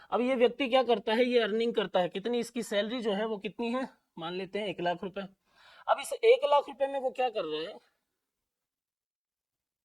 अब ये व्यक्ति क्या करता है, ये अर्निंग करता है, कितनी इसकी सैलरी जो है वो कितनी है, मान लेते हैं 1 लाख रुपए। अब इस 1 लाख रुपए में वो क्या कर रहे हैं,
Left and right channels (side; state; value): both; identical; correlation 1.00